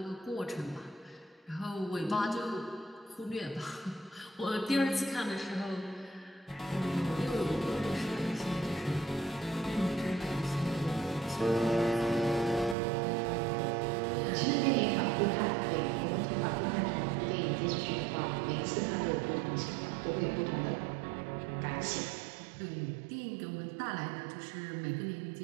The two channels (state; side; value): drops out; left; at 12.8 s